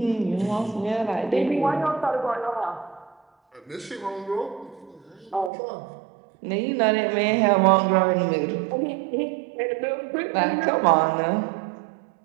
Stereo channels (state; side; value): drops out; left; at 5.5 s